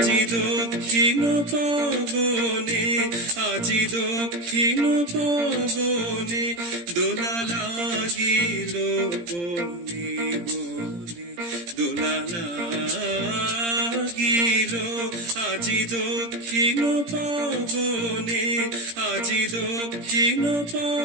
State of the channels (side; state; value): left; late; 17 ms